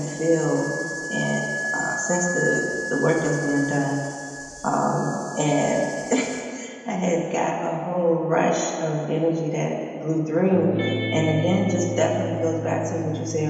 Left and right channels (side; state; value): both; identical; correlation 1.00